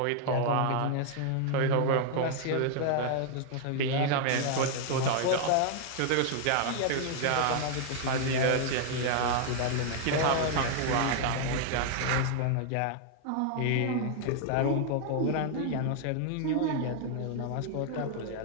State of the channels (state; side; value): different; both; correlation 0.00